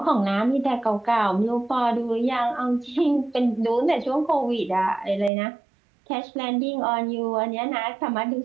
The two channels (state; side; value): drops out; left; at 5.3 s